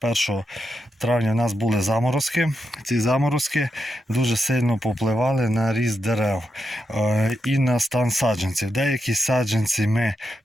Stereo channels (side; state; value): both; normal; correlation 0.85